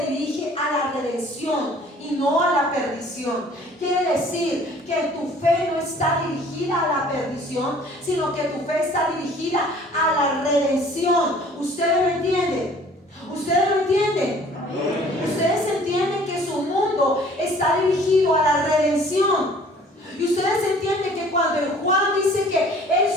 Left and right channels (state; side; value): normal; both; correlation 0.52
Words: dirige a la redención y no a la perdición. Quiere decir que tu fe no está dirigida a la perdición, sino que tu fe está dirigida a la redención. ¿Ustedes lo entienden? ¿Ustedes lo entienden? Ustedes entienden que su mundo está dirigido a la redención. Y ustedes entienden que cuando Juan dice que él